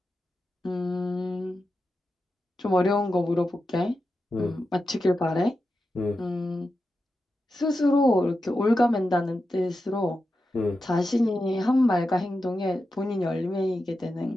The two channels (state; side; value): normal; both; correlation 0.90